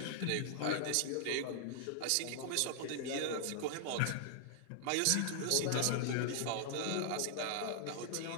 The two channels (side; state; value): both; different; correlation -0.01